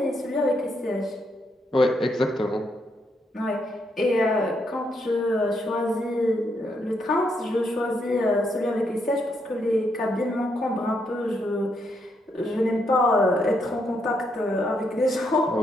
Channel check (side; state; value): both; normal; correlation 0.77